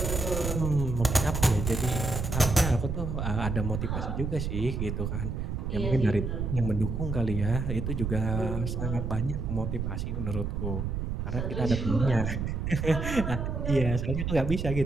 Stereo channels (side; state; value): right; noise; rumble, 2 dB below the sound